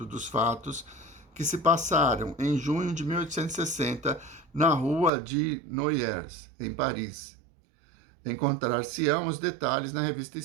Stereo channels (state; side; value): drops out; left; at 5.1 s